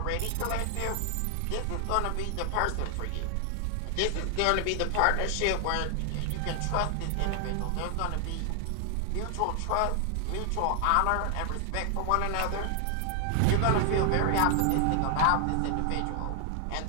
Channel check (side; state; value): both; different; correlation 0.00